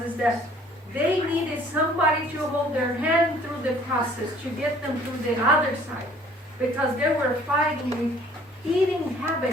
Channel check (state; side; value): normal; both; correlation 0.55